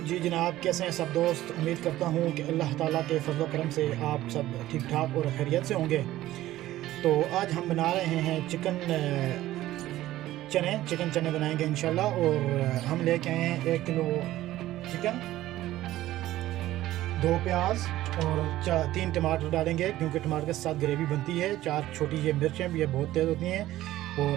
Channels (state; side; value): quieter; left; 15.0 dB